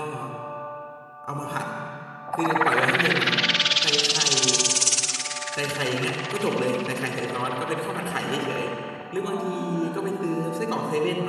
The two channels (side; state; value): both; identical; correlation 1.00